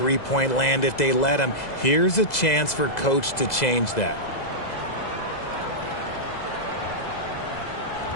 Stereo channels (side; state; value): right; late; 2.0 ms